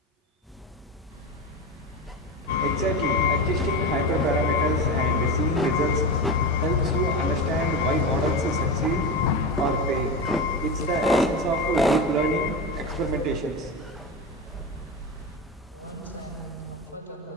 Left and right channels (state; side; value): normal; both; correlation 0.21